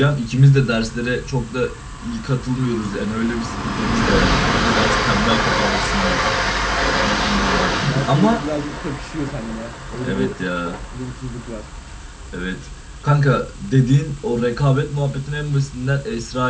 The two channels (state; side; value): identical; both; correlation 1.00